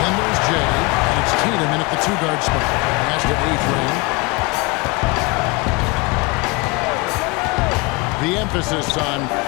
there's Jay, and it's Tatum in at the two-guard spot. Pass to A-Train. The emphasis on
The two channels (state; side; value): quieter; right; 26.4 dB